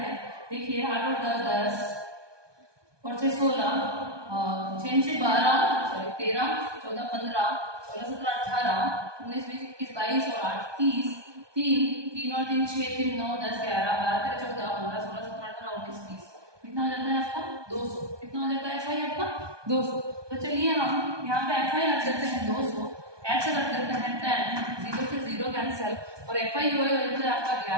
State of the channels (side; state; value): left; late; 1.2 ms